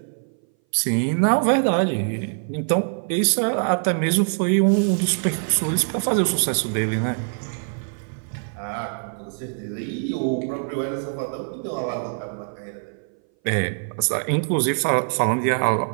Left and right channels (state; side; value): silent; left; 59 dB below the other